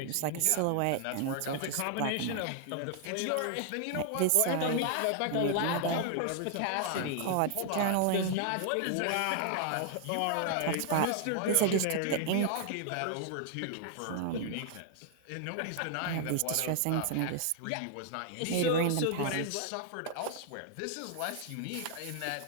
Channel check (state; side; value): different; both; correlation 0.00